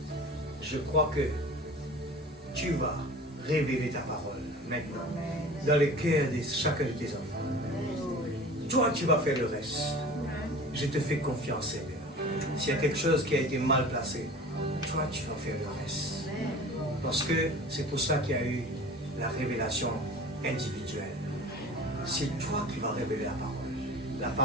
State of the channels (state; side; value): normal; both; correlation 0.39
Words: je crois que tu vas révéler ta parole maintenant dans le cœur de chacun de tes enfants. Toi, tu vas faire le reste. Je te fais confiance, Seigneur. S'il y a quelque chose qui a été mal placé, toi, tu vas faire le reste. Parce que c'est pour ça qu'il y a eu la révélation individuelle. C'est toi qui vas révéler la parole. La